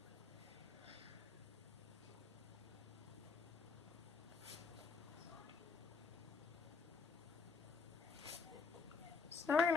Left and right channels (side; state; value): right; quieter; 4.9 dB